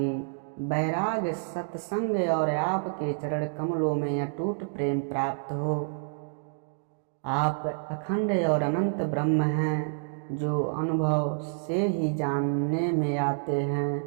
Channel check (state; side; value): silent; left; digital silence